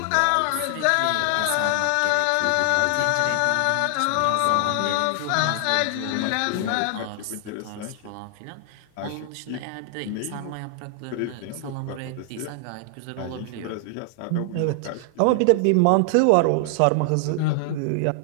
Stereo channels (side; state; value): both; different; correlation 0.00